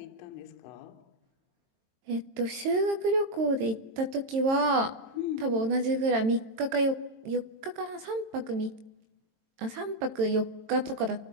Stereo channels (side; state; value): left; late; 22 ms